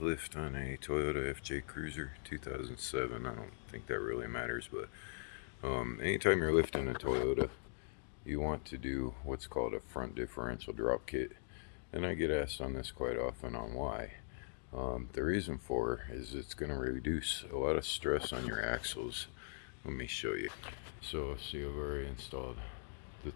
on a Toyota FJ Cruiser 2007. I don't think that really matters, but anytime you're lifting a Toyota, you want to do what's called a front differential drop kit. And I get asked on this quite often on why. The reason for is it's going to reduce a lot of stress on your axles. Let me show you. So see, I've already installed the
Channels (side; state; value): right; silent; digital silence